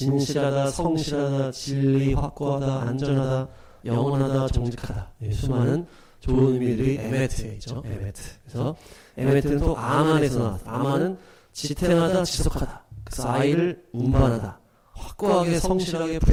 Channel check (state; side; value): identical; both; correlation 1.00